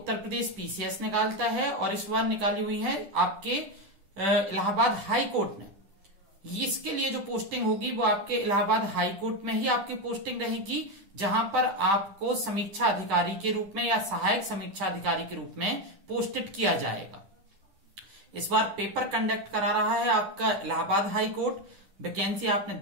प्रदेश पीसीएस निकालता है और इस बार निकाली हुई है आपके इलाहाबाद हाई कोर्ट ने। इसके लिए जो पोस्टिंग होगी वो आपके इलाहाबाद हाई कोर्ट में ही आपकी पोस्टिंग रहेगी, जहां पर आपको समीक्षा अधिकारी के रूप में या सहायक समीक्षा अधिकारी के रूप में पोस्टेड किया जाएगा। इस बार पेपर कंडक्ट करा रहा है आपका इलाहाबाद हाई कोर्ट। वैकेंसी आपने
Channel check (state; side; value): late; left; 10 ms